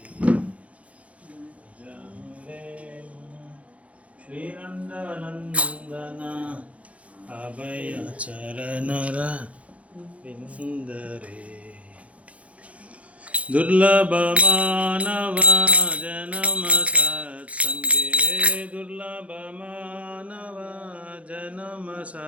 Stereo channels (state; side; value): late; left; 0.065 ms